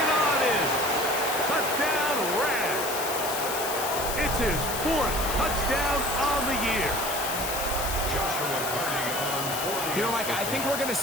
on in. Touchdown, Rams. It's his 4th touchdown on the year. Joshua Carney on 40. You know, Mike, I think we're going to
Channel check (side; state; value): left; noise; hiss, 4 dB below the sound